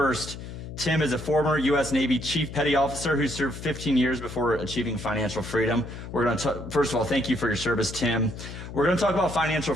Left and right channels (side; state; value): left; noise; hum, 11 dB below the sound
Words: Tim is a former U.S. Navy Chief Petty Officer who served 15 years before achieving financial freedom. We're going to first of all, thank you for your service, Tim. We're going to talk about financial